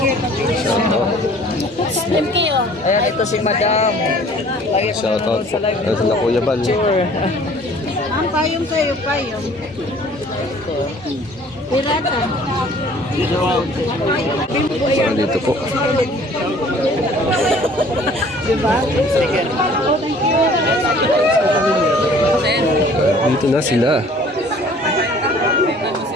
ayan, ito si Madam. shout out po. Ito na Kuya Bal. Ang payong kayo, payong. Pirata. So, dito po. Diba? Dito na sila.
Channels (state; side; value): normal; both; correlation 0.52